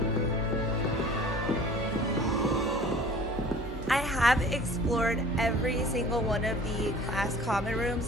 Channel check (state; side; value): normal; both; correlation 0.46